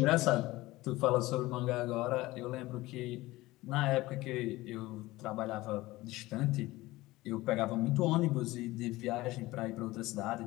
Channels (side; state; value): right; quieter; 18.9 dB